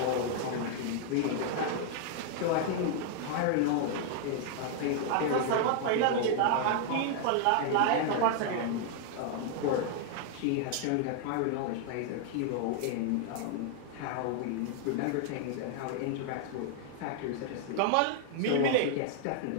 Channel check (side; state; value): both; different; correlation 0.00